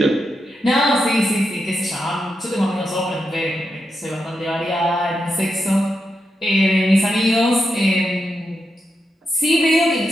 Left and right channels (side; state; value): both; normal; correlation 0.86